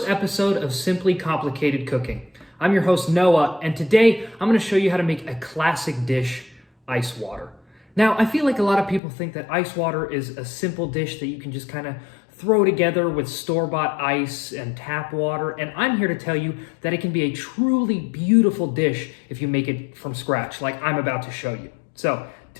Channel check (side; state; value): right; drops out; at 9.0 s